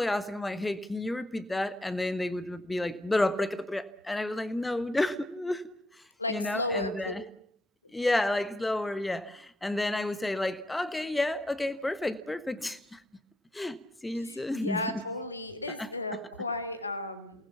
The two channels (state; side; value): normal; both; correlation 0.74